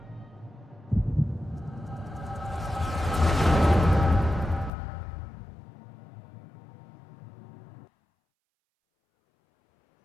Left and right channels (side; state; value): right; drops out; at 4.7 s